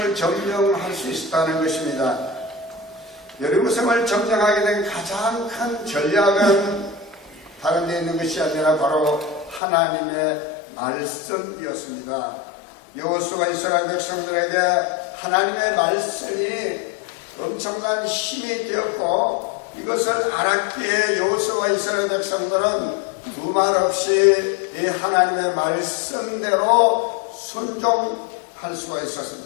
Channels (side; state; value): right; drops out; at 9.6 s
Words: 점령할 수 있었다는 것입니다. 여리고성을 점령하게 된 가장 큰 전략은 다른 데 있는 것이 아니라 바로 하나님의 말씀이었습니다. 여호수아가 이스라엘 백성들에게 하나님의 말씀이 엄청난 힘이 되었고 이것을 알았기에 여호수아와 이스라엘 백성들은 두말 없이 이 하나님의 말씀대로 순종할 수가